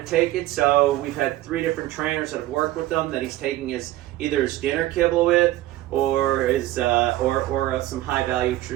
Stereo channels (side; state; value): left; quieter; 15.8 dB